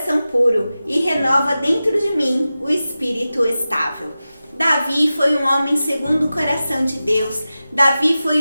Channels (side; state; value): both; inverted; correlation -0.94